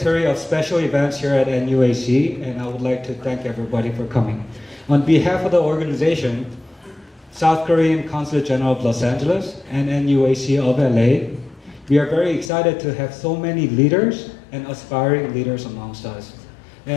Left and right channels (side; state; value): right; drops out; at 12.5 s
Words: of special events here at NUAC, and I would like to thank everybody for coming. On behalf of the organization, South Korean Consulate General of Los Angeles and NUAC of LA, we are very excited to have so many leaders and aspiring leaders amongst us.